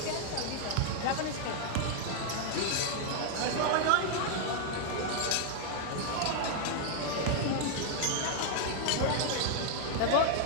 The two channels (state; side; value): different; both; correlation 0.00